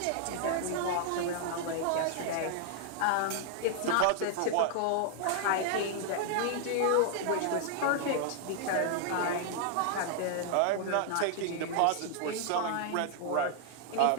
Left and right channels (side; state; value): both; different; correlation 0.00